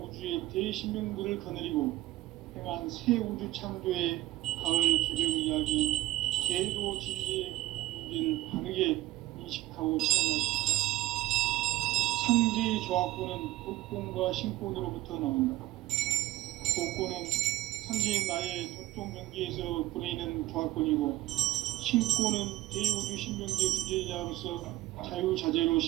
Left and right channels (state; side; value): quieter; left; 16.6 dB